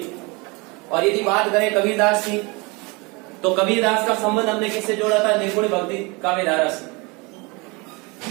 और यदि बात करें कबीरदास की, तो कबीरदास का संबंध हमने किससे जोड़ा था? निर्गुण भक्ति काव्य धारा से।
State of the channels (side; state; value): left; quieter; 27.3 dB